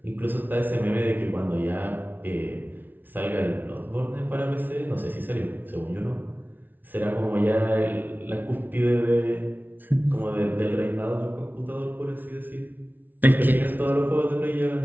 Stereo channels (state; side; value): late; left; 0.088 ms